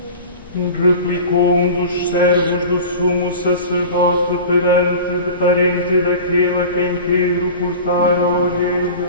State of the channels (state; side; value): inverted; both; correlation -0.36